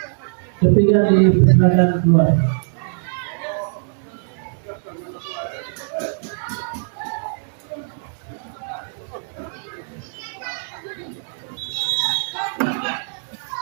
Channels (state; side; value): silent; left; digital silence